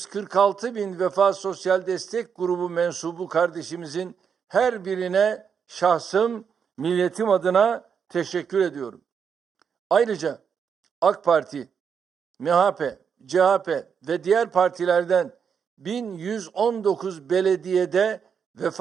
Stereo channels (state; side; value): quieter; left; 6.9 dB